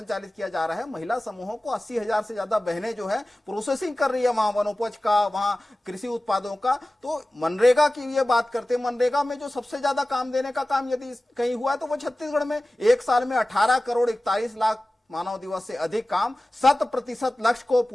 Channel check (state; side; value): normal; both; correlation 0.97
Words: किया जा रहा है, महिला समूहों को 80,000 से ज्यादा बहनें जो है प्रोसेसिंग कर रही है वहां वनोपज का, वहां कृषि उत्पादों का। तो मनरेगा की ये बात करते हैं, मनरेगा में जो सबसे ज्यादा काम देने का काम यदि कहीं हुआ है तो वो छत्तीसगढ़ में। एक साल में 18 करोड़ 41 लाख मानव दिवस से अधिक काम, 100% लक्ष्य को